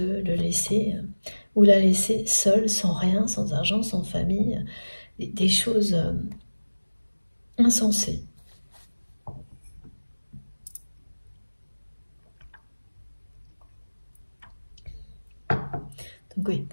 le laisser ou la laisser seule, sans rien, sans argent, sans famille, des choses insensées. Donc oui,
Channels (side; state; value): both; inverted; correlation -1.00